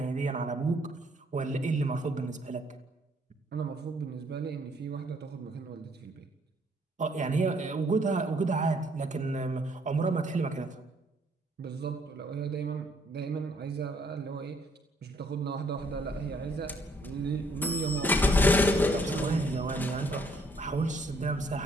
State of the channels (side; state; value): both; normal; correlation 0.66